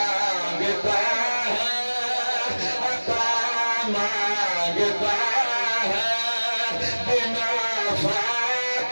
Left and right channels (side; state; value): both; inverted; correlation -1.00